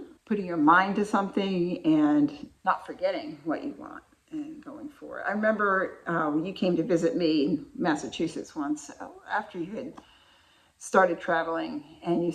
putting your mind to something and not forgetting what you want and going for it. I remember when you came to visit me in Massachusetts once, after you had started traveling, and you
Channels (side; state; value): both; identical; correlation 1.00